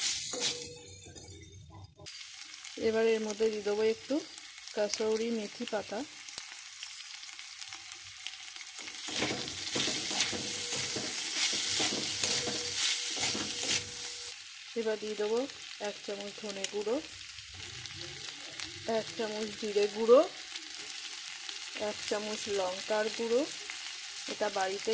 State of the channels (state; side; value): identical; both; correlation 1.00